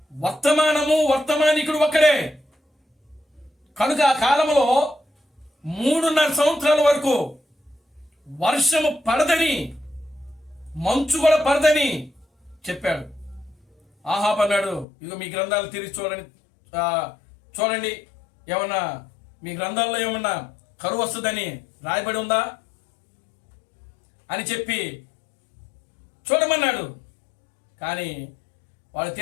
వర్తమానము, వర్తమానికుడు ఒక్కడే. కనుక ఆ కాలంలో 3.5 సంవత్సరాల వరకు వర్షము పడదని, మంచు కూడా పడదని చెప్పాడు. ఆహాబు అన్నాడు, ఇదిగో మీ గ్రంథాలు తిరిగి చూడండి, ఏమన్నా మీ గ్రంథాల్లో ఏమన్నా కరువు వస్తుందని రాయబడి ఉందా అని చెప్పి చూడమన్నాడు. కానీ వాళ్ళు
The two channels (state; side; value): drops out; right; at 14.9 s